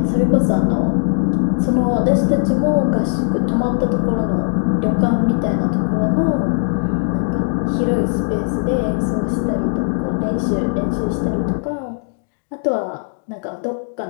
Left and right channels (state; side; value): silent; right; digital silence